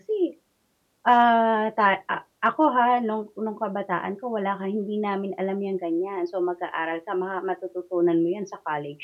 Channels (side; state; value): both; identical; correlation 1.00